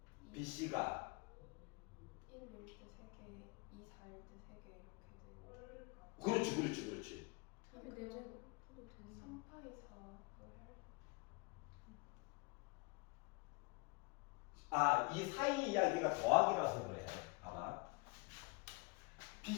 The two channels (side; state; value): right; quieter; 27.2 dB